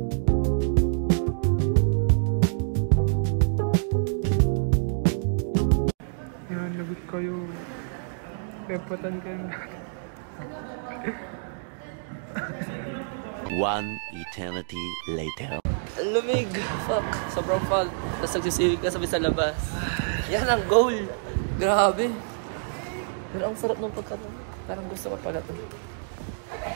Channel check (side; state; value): left; silent; digital silence